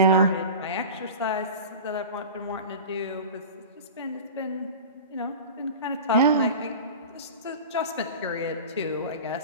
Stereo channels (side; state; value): both; inverted; correlation -0.32